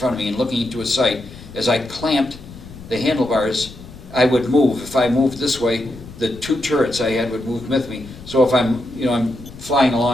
of me, and looking into a sight, as I clamped the handlebars, I would move. If I moved this way, the two turrets I had would move with me. So if I'm flying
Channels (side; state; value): left; noise; rumble, 17 dB below the sound